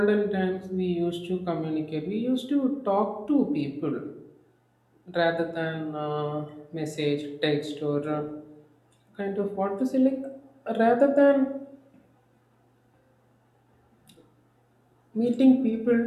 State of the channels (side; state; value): both; identical; correlation 1.00